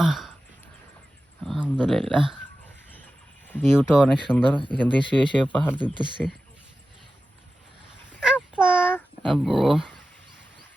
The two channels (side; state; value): both; normal; correlation 0.94